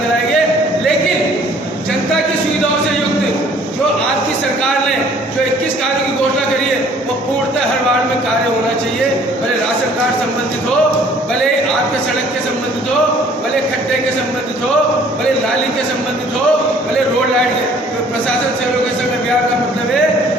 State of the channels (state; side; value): normal; both; correlation 0.56